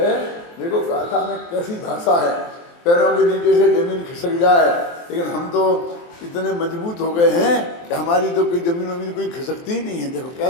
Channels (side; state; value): right; late; 23 ms